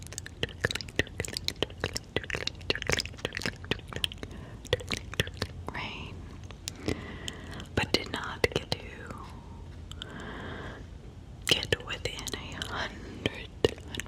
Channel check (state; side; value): identical; both; correlation 1.00